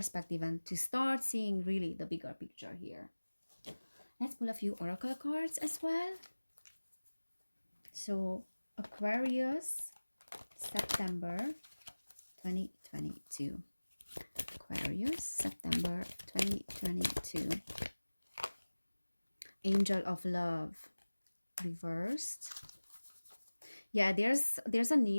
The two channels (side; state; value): both; inverted; correlation -1.00